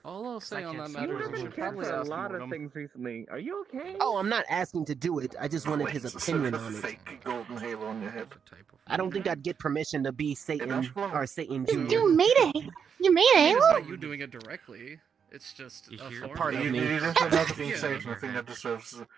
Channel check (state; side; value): quieter; left; 7.0 dB